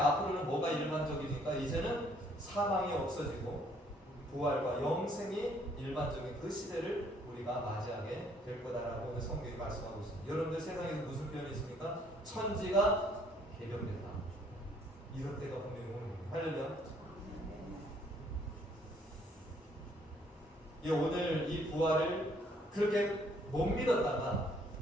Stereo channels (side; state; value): both; normal; correlation 0.64